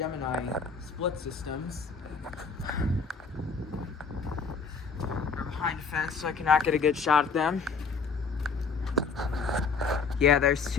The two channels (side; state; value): right; quieter; 5.0 dB